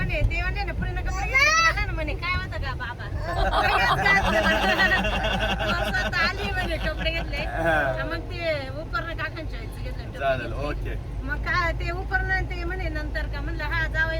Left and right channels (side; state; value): both; identical; correlation 1.00